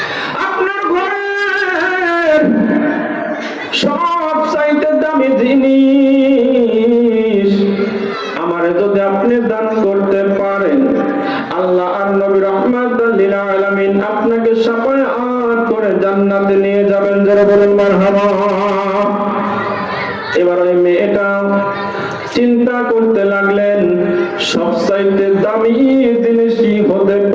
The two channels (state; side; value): identical; both; correlation 1.00